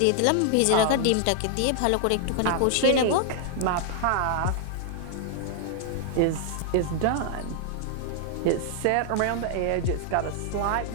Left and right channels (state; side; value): different; both; correlation 0.00